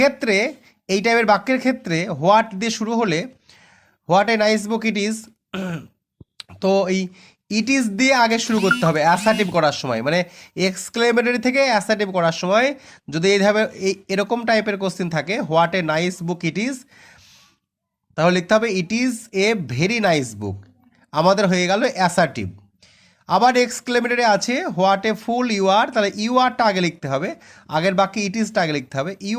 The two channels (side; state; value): both; identical; correlation 1.00